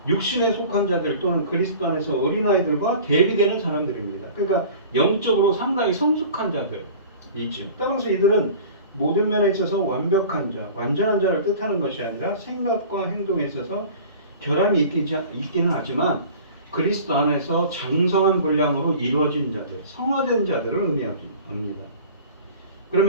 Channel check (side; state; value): both; inverted; correlation -0.42